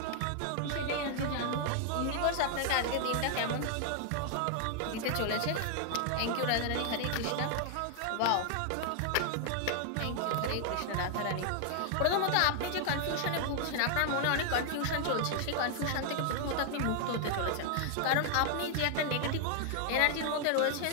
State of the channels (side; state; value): both; different; correlation 0.00